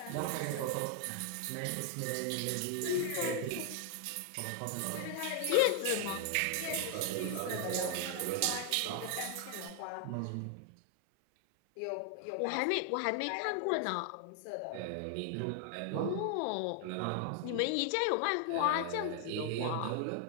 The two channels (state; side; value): different; both; correlation 0.00